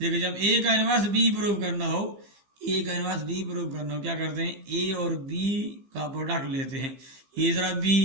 जब ए का इनवर्स बी प्रूव करना हो, ए का इनवर्स बी प्रूव करना हो क्या करते हैं, ए और बी का प्रोडक्ट लेते हैं, ए जरा बी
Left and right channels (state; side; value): late; left; 15 ms